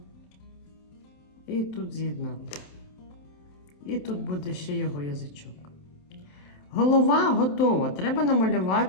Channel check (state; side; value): late; right; 27 ms